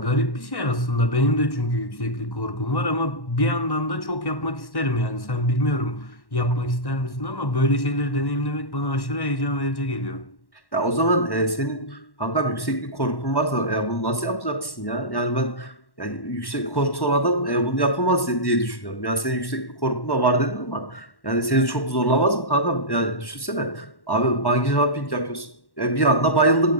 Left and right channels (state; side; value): late; right; 1.1 ms